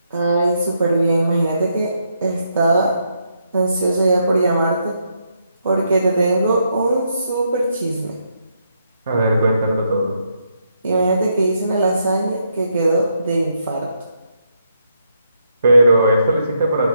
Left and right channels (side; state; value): both; inverted; correlation -0.78